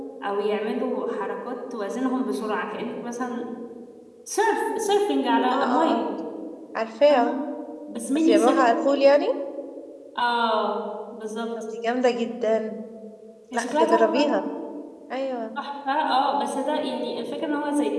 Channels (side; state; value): both; identical; correlation 1.00